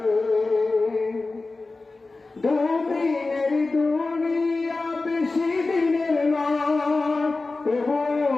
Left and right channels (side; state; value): right; quieter; 3.5 dB